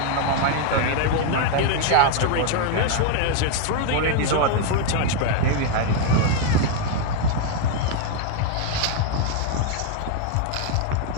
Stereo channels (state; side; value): different; both; correlation 0.01